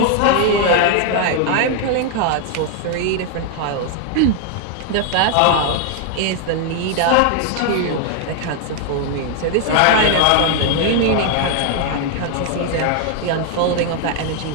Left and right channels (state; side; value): different; both; correlation 0.00